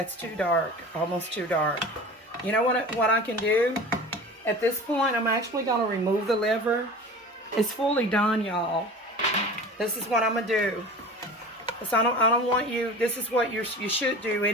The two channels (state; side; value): normal; both; correlation 0.37